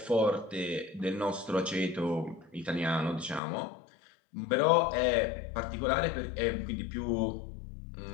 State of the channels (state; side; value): drops out; right; at 3.4 s